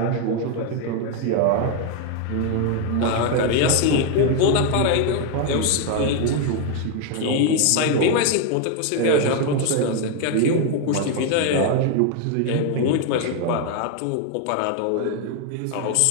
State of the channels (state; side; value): different; both; correlation 0.01